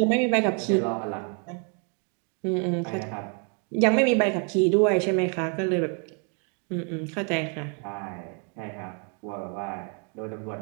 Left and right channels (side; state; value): left; quieter; 39.2 dB